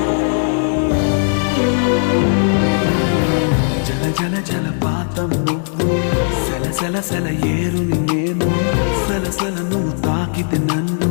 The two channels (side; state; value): right; silent; 68 dB below the other